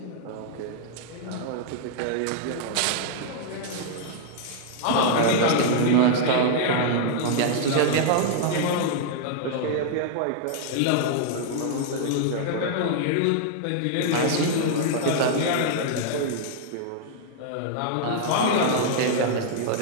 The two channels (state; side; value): different; both; correlation -0.01